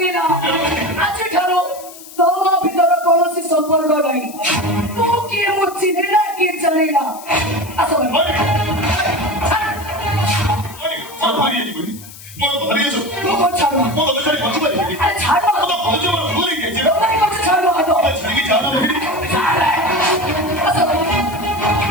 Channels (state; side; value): noise; left; hiss, 17 dB below the sound